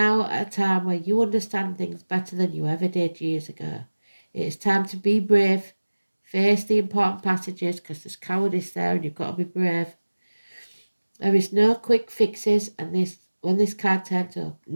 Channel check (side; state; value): both; inverted; correlation -1.00